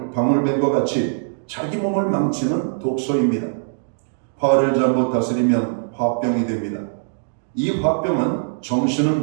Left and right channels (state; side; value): silent; left; digital silence